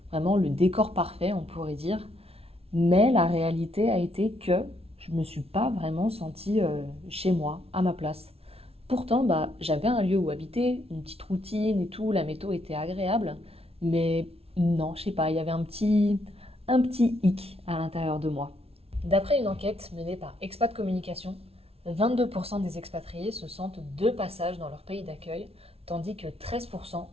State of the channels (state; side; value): late; left; 0.29 ms